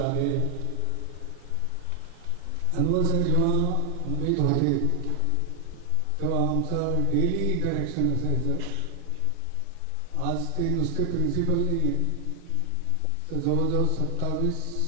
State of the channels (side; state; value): both; different; correlation 0.00